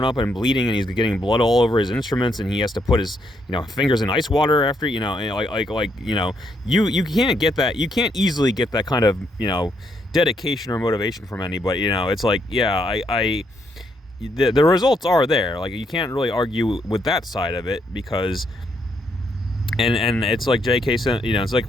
up and bleeding, and he's getting blood all over his instruments, and he has to put his fingers in ice water after you can't get that. You can't easily get that kind of dedication or motivation from anybody. It's like, yeah, the results are there. Like you can't really argue with that side of it, because. And it's like J.K. said, it's like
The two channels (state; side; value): normal; both; correlation 0.75